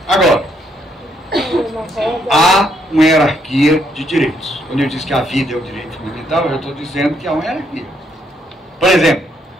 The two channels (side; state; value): both; normal; correlation 0.73